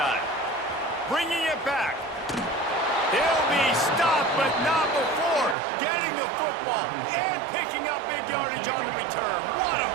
Bringing it back. He'll be stopped, but not before getting the football and picking up big yardage on the return. What a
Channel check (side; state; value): left; drops out; at 5.6 s